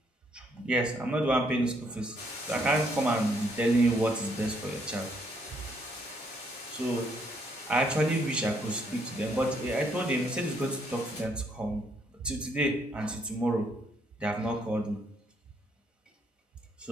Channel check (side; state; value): both; normal; correlation 0.70